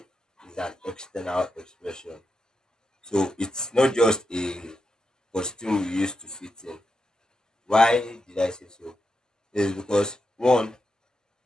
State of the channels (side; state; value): both; normal; correlation 0.87